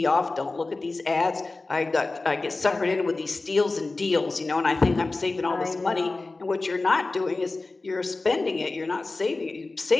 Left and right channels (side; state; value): right; quieter; 3.4 dB